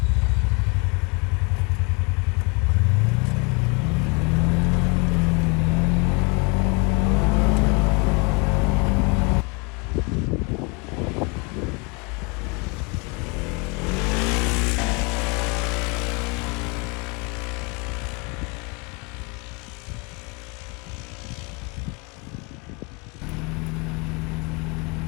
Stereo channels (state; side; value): quieter; right; 30.5 dB